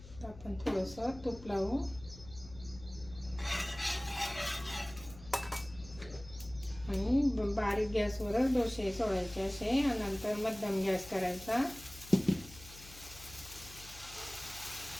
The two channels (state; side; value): noise; left; hum, 17 dB below the sound